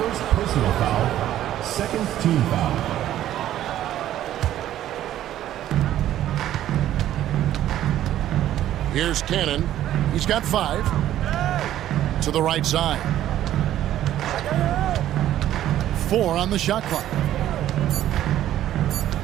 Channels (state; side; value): quieter; left; 12.5 dB